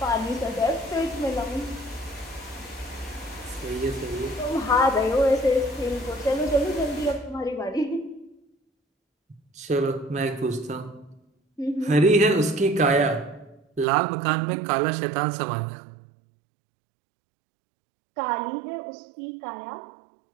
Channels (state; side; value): drops out; left; at 13.9 s